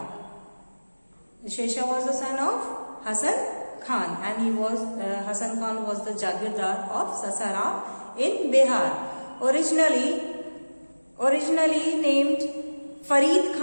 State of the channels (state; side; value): inverted; both; correlation -1.00